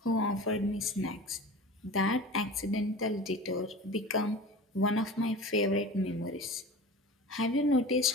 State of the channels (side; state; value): both; normal; correlation 0.36